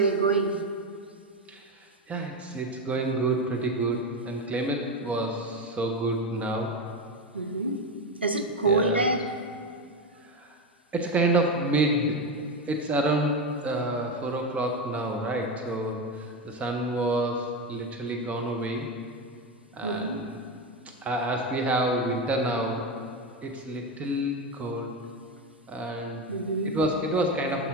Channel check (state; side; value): normal; both; correlation 0.14